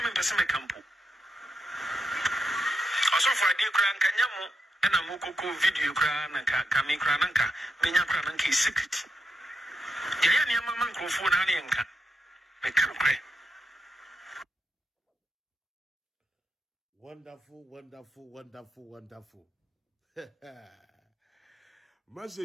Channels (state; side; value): normal; both; correlation 0.84